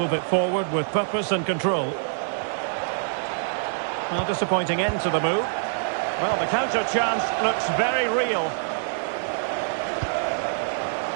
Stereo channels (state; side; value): silent; left; 62 dB below the other